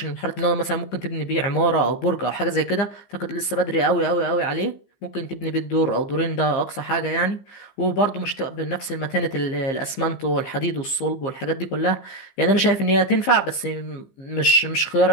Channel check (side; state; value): right; late; 15 ms